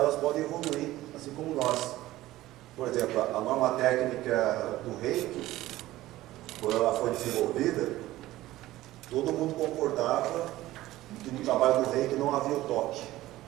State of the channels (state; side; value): quieter; left; 16.2 dB